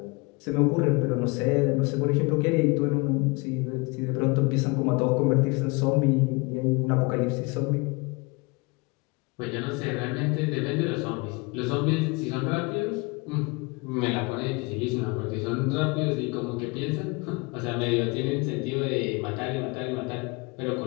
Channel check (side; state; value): right; quieter; 27.6 dB